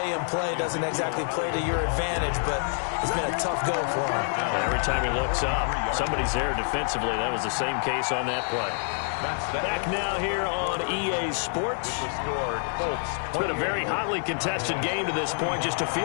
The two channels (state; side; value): silent; right; 60 dB below the other